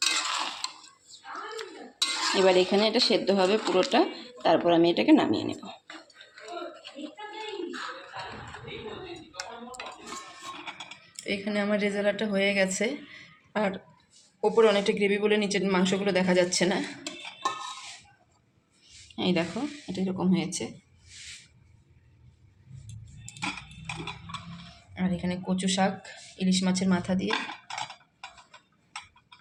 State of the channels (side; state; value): both; identical; correlation 1.00